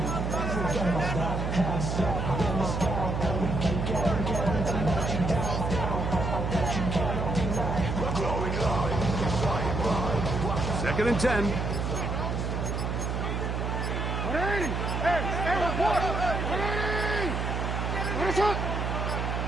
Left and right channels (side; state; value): right; noise; hum, 1 dB below the sound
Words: Second and 10.